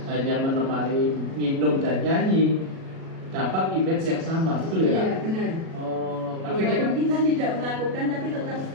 hanya menemani minum dan nyanyi dapat image yang sama, betul ya Kak? Iya benar. Oh, akhirnya kan Walaupun kita tidak melakukan, tapi tetap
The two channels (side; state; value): left; late; 37 ms